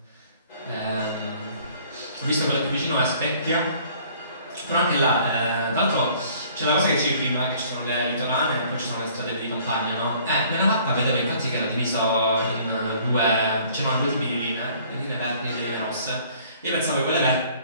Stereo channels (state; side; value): inverted; both; correlation -0.56